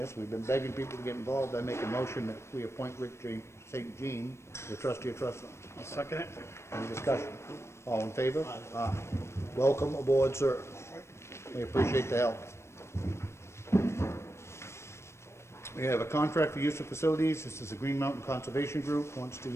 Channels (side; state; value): right; late; 0.13 ms